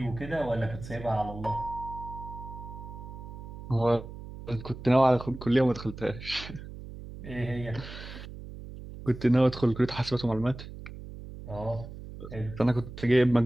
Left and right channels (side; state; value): right; noise; hum, 12 dB below the sound